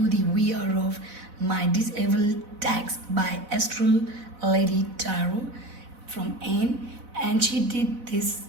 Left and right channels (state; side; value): late; left; 4.0 ms